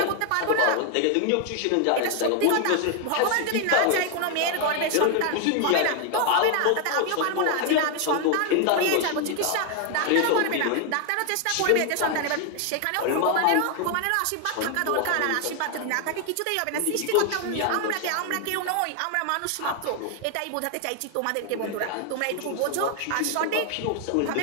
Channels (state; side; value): different; both; correlation 0.00